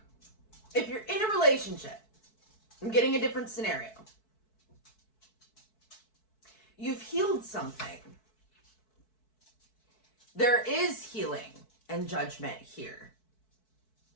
if you're in a relationship, I'm getting a different scenario. You've healed something. There is healing and judgment here.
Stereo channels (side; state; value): right; late; 4.6 ms